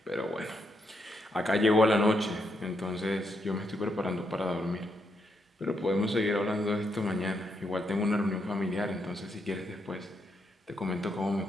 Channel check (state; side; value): normal; both; correlation 0.79